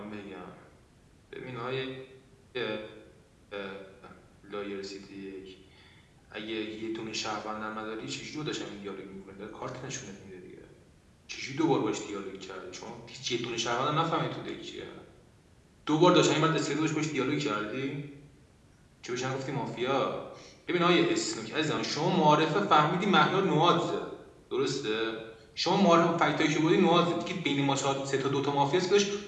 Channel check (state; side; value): identical; both; correlation 1.00